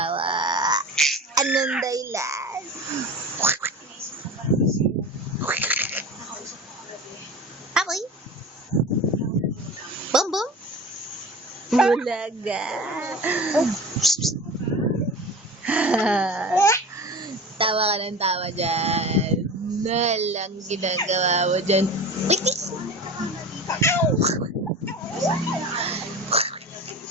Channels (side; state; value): both; normal; correlation 0.33